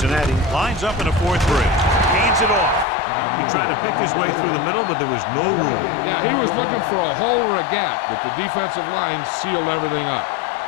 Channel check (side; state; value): right; drops out; at 2.9 s